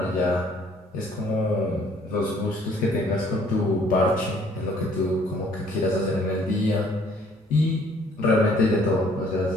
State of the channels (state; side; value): normal; both; correlation 0.60